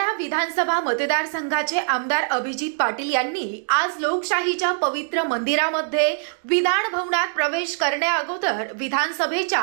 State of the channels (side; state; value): left; silent; digital silence